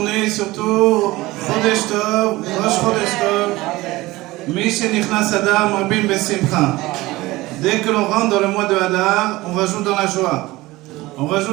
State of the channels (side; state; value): left; quieter; 19.5 dB